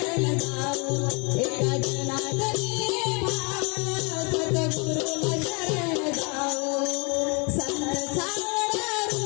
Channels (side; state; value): right; quieter; 32.4 dB